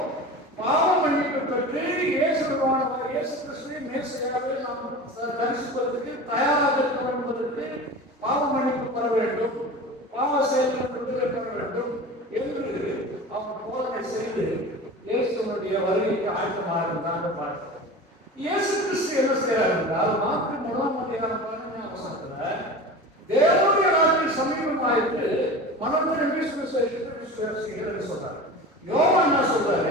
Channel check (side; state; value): both; normal; correlation 0.33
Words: பாவ மன்னிப்பு பெற்று இயேசு கிறிஸ்துவை மேசியாவை நாம் தரிசிப்பதற்கு தயாராக இருக்க என்பதற்கு பாவ மன்னிப்பு பெற வேண்டும், பாவ செயல்கள் விடுதலை பெற வேண்டும் என்று அவன் போதனை செய்து இயேசுடைய வருகைக்கு ஆயத்தமாக இருந்தாங்க பார்க்கிறோம். இயேசு கிறிஸ்து என்ன செய்யறாரு என்றால் மார்க்கு 1ஆம் அதிகாரம் 15ஆம் வசனத்துல தேவனுடைய நாட்டில் சமீபமாயிட்டு மனம் திரும்பி சுவிசேஷத்தை விசுவாசிகள் சொல்றாரு. யோவான் என்ன